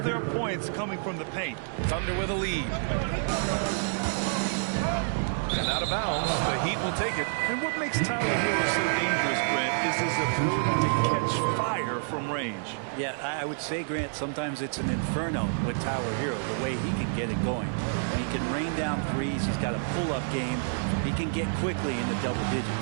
points coming from the paint. Thunder with a lead. And out of bounds, the Heat will take it. And what makes Tyler Hero so dangerous, Grant, is his ability to catch fire from range. Yeah, I would say, Grant, sometimes it's an inferno with Tyler Hero, the way he can get it going. And he can rain down threes. He's got a pull-up game. He can get quickly into double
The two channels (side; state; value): left; silent; digital silence